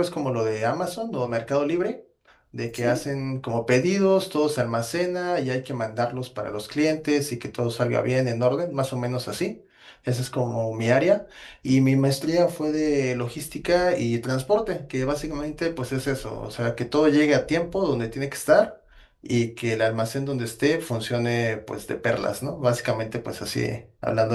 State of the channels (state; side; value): identical; both; correlation 1.00